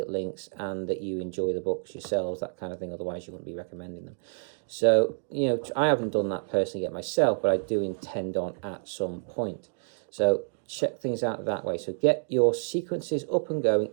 links and that you enjoy the books yourselves, that kind of thing. Otherwise, you wouldn't be recommending them. So, I haven't done that personally yet myself, but I do intend on at some point. So check things out that way. So get your sequences up and going.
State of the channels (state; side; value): silent; left; digital silence